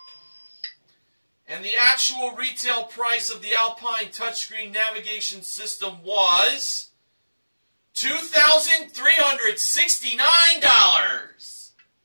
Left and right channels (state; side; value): inverted; both; correlation -1.00